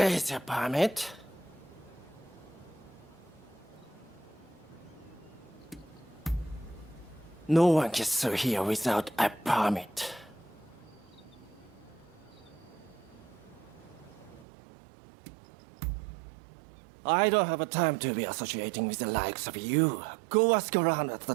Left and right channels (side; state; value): left; drops out; at 14.5 s